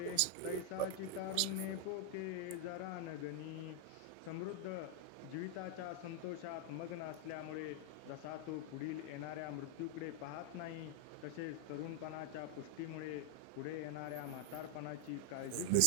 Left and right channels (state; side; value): different; both; correlation 0.00